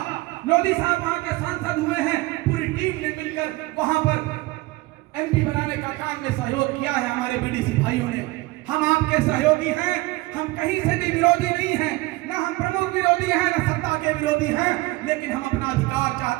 लोधी साहब वहां के सांसद हुए हैं, पूरी टीम ने मिलकर वहां पर एमपी बनाने का काम में सहयोग किया है हमारे बीडीसी भाइयों ने। हम आपके सहयोगी हैं, हम कहीं से भी विरोधी नहीं हैं, ना हम प्रमुख विरोधी हैं, ना सत्ता के विरोधी हैं, लेकिन हम अपना अधिकार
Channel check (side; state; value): left; quieter; 21.0 dB